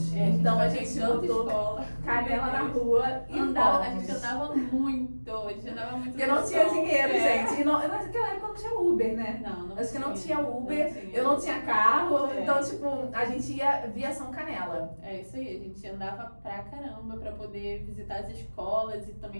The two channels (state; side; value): inverted; both; correlation -1.00